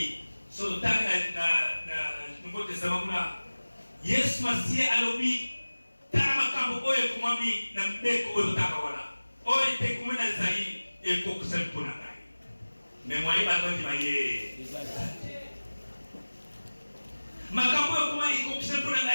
so tanga na Nouveau Testament kuna Yesu Masia alobi tara makambo oyo kumami na mbeko oyo taka wana oyo te kumena zai eko kusali pona ngai mais moi ba ndi maye makambo oyo kuma eko kusali pona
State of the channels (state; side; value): inverted; both; correlation -1.00